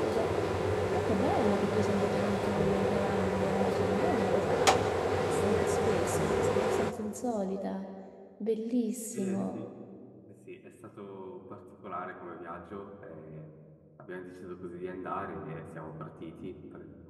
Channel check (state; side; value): identical; both; correlation 1.00